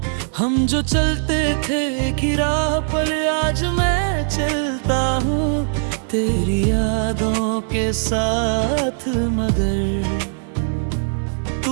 हम जो चलते थे एक ही राह पर आज मैं चलता हूँ तेरी यादों के साथ, मगर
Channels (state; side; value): silent; left; 59 dB below the other